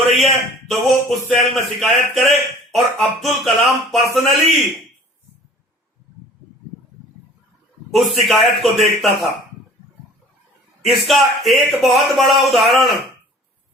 रही है, तो वो उस सेल में शिकायत करे, और अब्दुल कलाम पर्सनली उस शिकायत को देखता था। इसका एक बहुत बड़ा उदाहरण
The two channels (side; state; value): both; normal; correlation 0.48